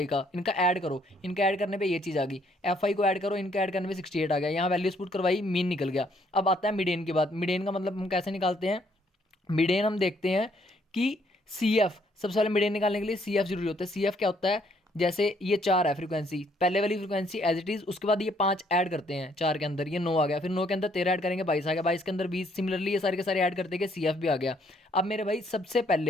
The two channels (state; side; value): normal; both; correlation 0.67